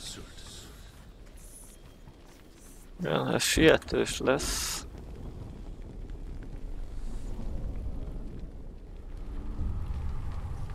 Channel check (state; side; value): identical; both; correlation 1.00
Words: Igen, ez sietős lesz.